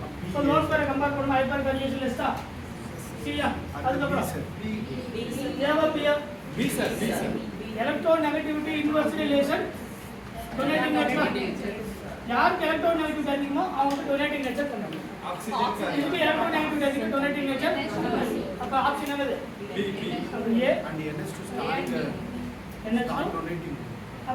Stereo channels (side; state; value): both; identical; correlation 1.00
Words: சோ லோன் பேரை கம்பேர் பண்ணும்போது ஹைப்பர் கான்ஜுகேஷன் லிஸ்டா C யா அதுக்கு அப்புறம் ஏவா B sir electronegativity inverse relation donating nature யாருக்கு எலக்ட்ரோநெகட்டிவிட்டி அதிகமோ அவங்களுக்கு டொனேட்டிங் நேச்சர் பண்ணணும் ஆக்சிஜன் இதுக்கு எலக்ட்ரோநெகட்டிவிட்டி அதிகம் டொனேட்டிங் நேச்சர் அப்ப ஆப்ஷன் என்னது அப்ப A and NH2 start NH2 donating